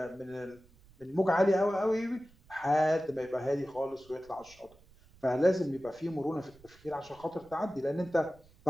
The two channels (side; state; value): right; noise; rumble, 27 dB below the sound